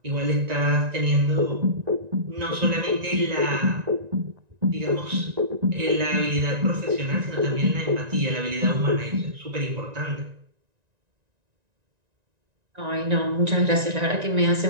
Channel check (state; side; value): late; left; 1.9 ms